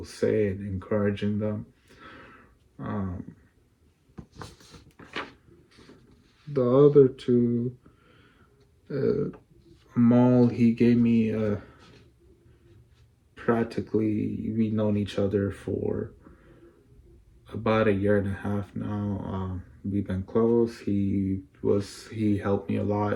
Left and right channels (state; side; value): identical; both; correlation 1.00